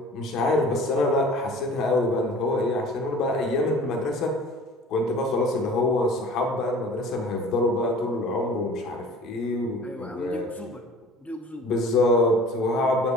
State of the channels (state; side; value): normal; both; correlation 0.45